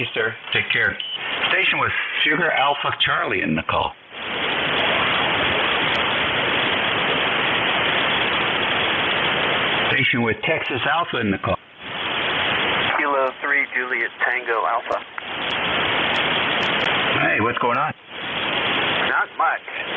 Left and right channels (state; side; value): identical; both; correlation 1.00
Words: sir. Take care. Station with Sugar Alpha Charlie in the call. Station with Texas Alpha in the call. Kilo 3 Juliet Tango Alpha. Hey, what's going on? Not much.